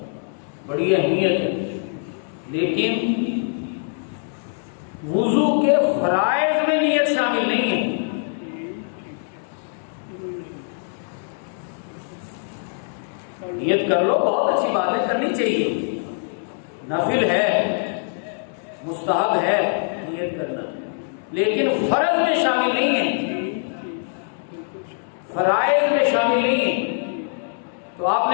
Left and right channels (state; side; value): silent; right; digital silence